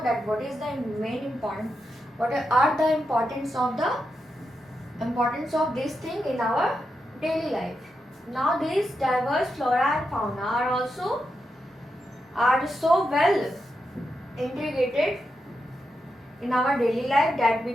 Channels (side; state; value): both; normal; correlation 0.86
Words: that what is the main important, what are the importance of this thing in our daily life. Now these diverse flora and fauna are so well integrated in our daily life that we